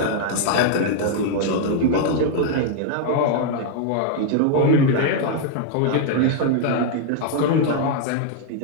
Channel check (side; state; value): both; different; correlation 0.00